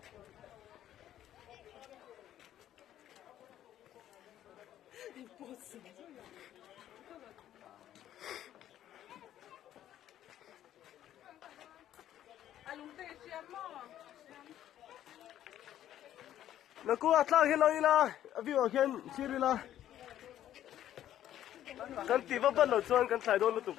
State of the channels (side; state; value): right; quieter; 11.8 dB